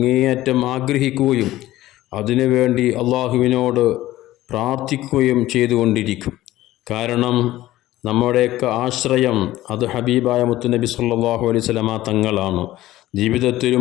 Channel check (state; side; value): quieter; right; 15.7 dB